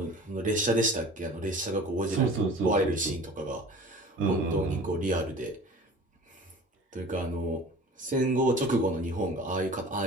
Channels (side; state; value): both; normal; correlation 0.42